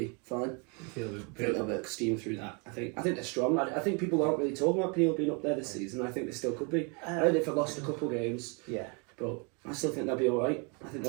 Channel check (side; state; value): left; quieter; 33.9 dB